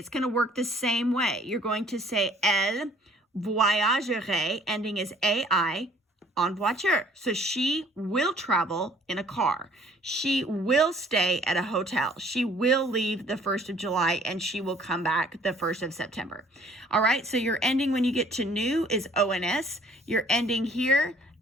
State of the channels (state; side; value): normal; both; correlation 0.57